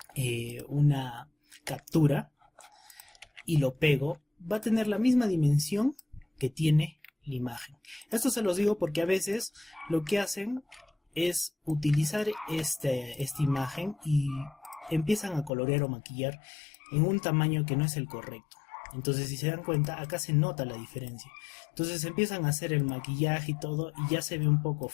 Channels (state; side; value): drops out; right; at 15.5 s